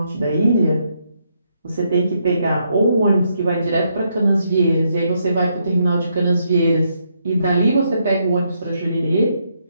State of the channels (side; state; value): both; inverted; correlation -0.77